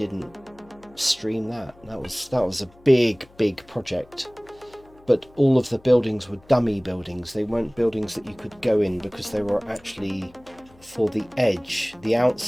stream that. That was a big project. But all of the buildings were dummy buildings. They weren't buildings that you could go in, because they were actually for the edge, the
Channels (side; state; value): left; noise; hum, 27 dB below the sound